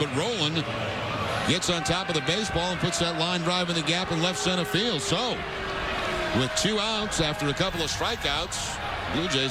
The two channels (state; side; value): identical; both; correlation 1.00